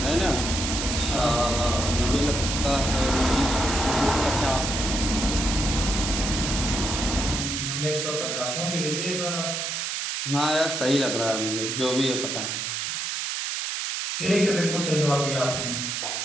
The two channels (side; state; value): right; noise; hiss, 2 dB below the sound